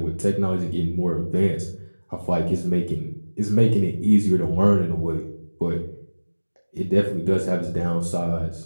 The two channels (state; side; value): inverted; both; correlation -1.00